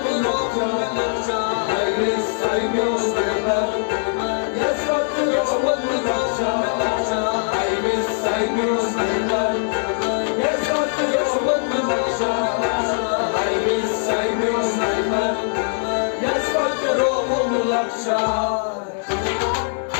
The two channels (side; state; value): right; silent; digital silence